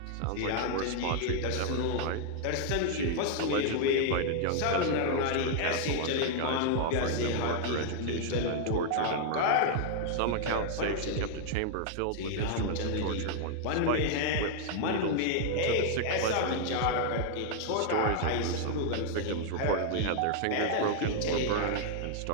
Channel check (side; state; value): both; different; correlation 0.00